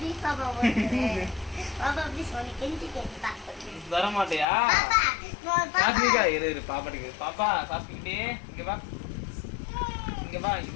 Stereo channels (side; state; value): right; drops out; at 4.5 s